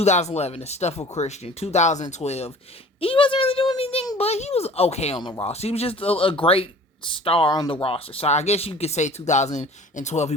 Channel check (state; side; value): normal; both; correlation 0.46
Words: the stuff with Christian. 2012, he wasn't really doing anything, but he was okay on the roster. He was just a great star on the roster. So I guess you could say 2012 he